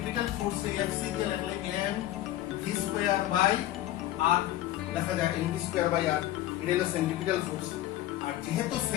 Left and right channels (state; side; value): quieter; right; 14.2 dB